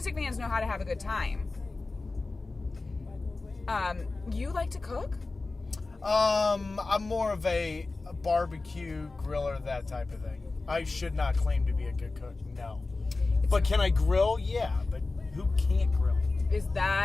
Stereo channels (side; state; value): right; quieter; 3.5 dB